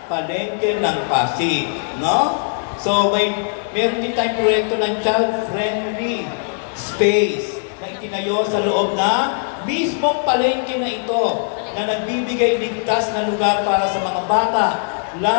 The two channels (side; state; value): right; silent; 57 dB below the other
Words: palengke ng Pasig. No? So, meron din tayong proyekto ng child-friendly space na itinayo sa loob na mismong palengke na ito, na nagbibigay ligtas na lugar para sa mga bata,